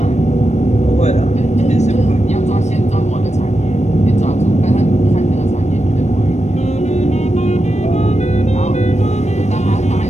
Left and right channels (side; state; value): right; late; 0.33 ms